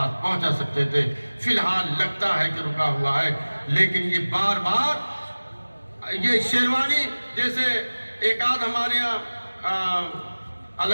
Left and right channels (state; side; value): inverted; both; correlation -1.00